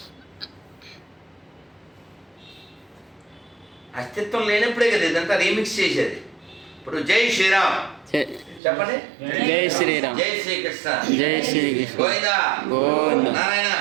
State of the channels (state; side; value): drops out; left; at 8.6 s